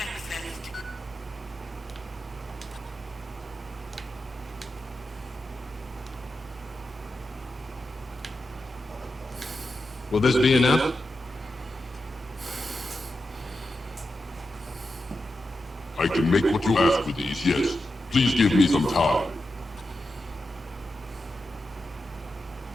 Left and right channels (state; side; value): normal; both; correlation 0.89